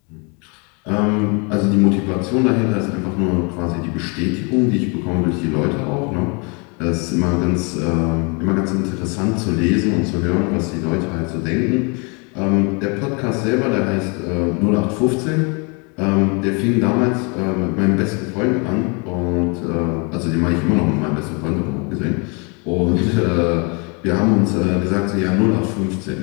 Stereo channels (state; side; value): quieter; right; 32.7 dB